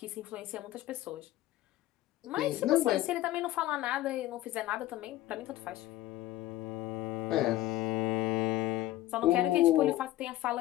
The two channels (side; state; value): right; quieter; 15.6 dB